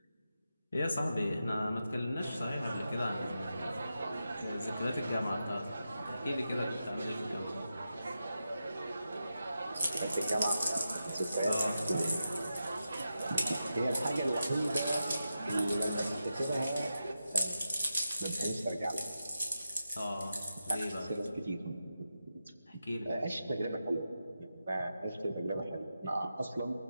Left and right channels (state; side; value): inverted; both; correlation -0.89